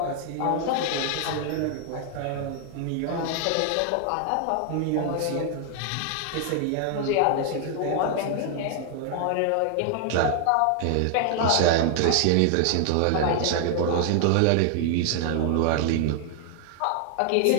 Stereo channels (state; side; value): different; both; correlation 0.00